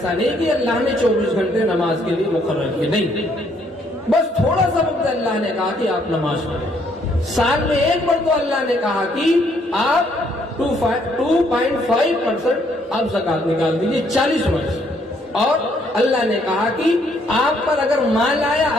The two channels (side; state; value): both; normal; correlation 0.68